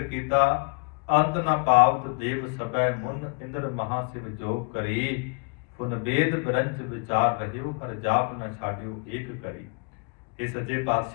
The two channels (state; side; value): quieter; right; 33.4 dB